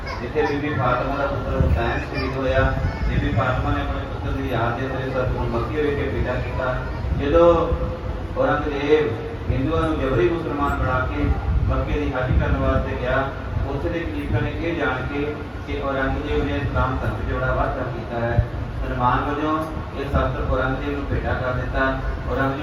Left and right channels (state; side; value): identical; both; correlation 1.00